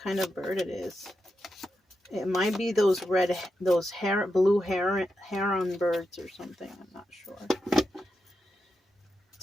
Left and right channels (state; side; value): normal; both; correlation 0.87